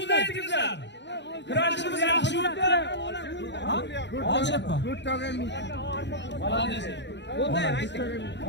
aytingizlar. Kurashimiz yaxshi o'tdi. Olishyapti.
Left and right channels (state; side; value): late; right; 0.51 ms